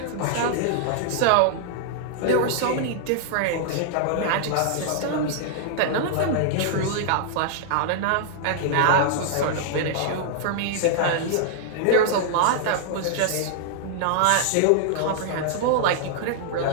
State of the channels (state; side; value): different; both; correlation -0.01